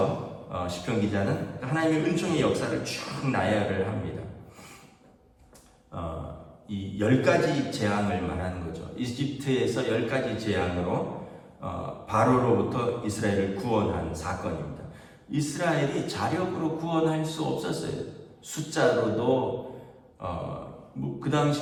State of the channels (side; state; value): both; identical; correlation 1.00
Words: 시편 기자는 하나님의 은총의 역사를 쭉 나열을 합니다. 이 10가지 재앙을 말하는 거죠. 이집트에서 10가지 재앙으로 바로로부터 이스라엘을 구원한 사건입니다. 이스라엘이 자력으로 구원할 수 없었어요. 숫자로도 그